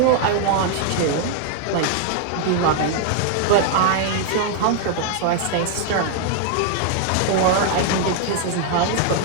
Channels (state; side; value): different; both; correlation 0.00